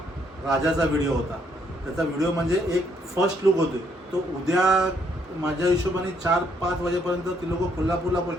राजाचा व्हिडिओ होता. त्याचा व्हिडिओ म्हणजे एक फर्स्ट लुक होते. तो उद्या माझ्या हिशोबाने 4-5 वाजेपर्यंत ती लोक कोल्हापूरला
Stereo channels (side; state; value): both; normal; correlation 0.71